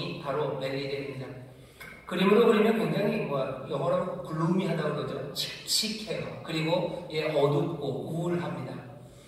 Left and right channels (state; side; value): identical; both; correlation 1.00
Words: 바로 멜리데입니다. 그림으로 그리면 굉장히 영어로 글루미하다고 그러죠. 칙칙해요. 그리고 어둡고 우울합니다.